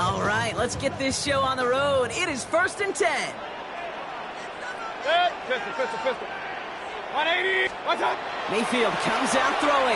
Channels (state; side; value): identical; both; correlation 1.00